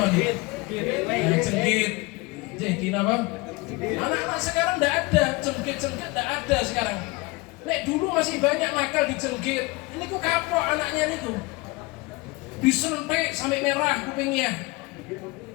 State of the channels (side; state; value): right; quieter; 24.1 dB